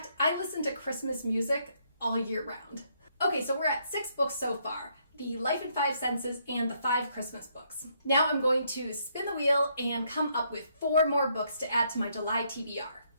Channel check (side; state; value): both; inverted; correlation -0.72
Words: I listen to Christmas music all year round. Okay, so we're at 6 books so far. The Life in 5 Senses and the 5 Christmas books. Now I'm going to spin the wheel and come up with 4 more books to add to my July TBR.